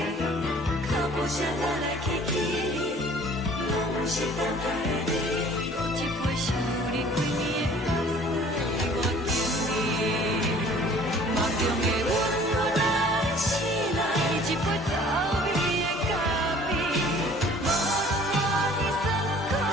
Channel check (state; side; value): normal; both; correlation 0.51